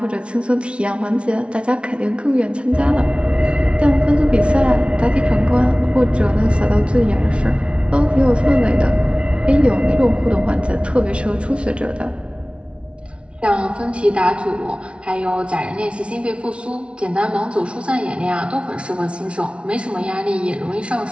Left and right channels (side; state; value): left; late; 0.059 ms